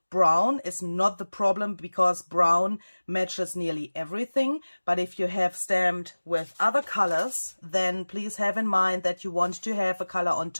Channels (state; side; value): inverted; both; correlation -1.00